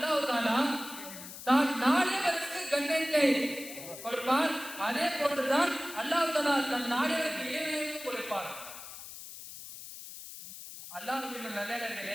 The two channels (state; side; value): noise; left; hiss, 13 dB below the sound